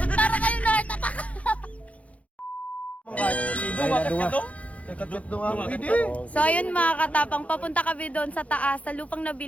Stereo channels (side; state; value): right; late; 0.066 ms